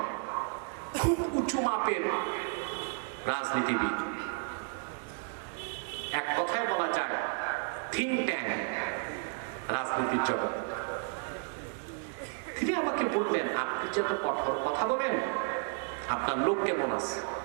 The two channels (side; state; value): left; quieter; 40.0 dB